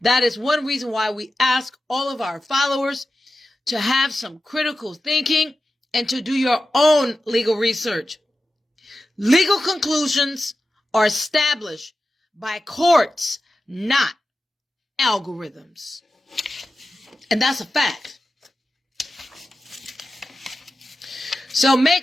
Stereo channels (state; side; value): normal; both; correlation 0.93